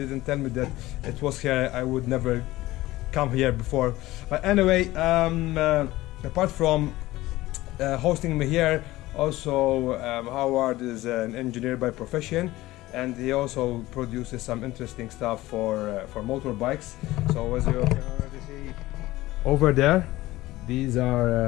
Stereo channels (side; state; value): right; quieter; 17.6 dB